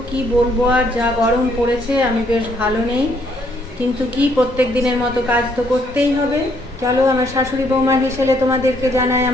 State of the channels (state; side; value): normal; both; correlation 0.69